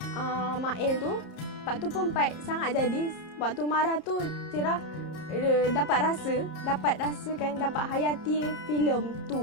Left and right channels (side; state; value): right; late; 30 ms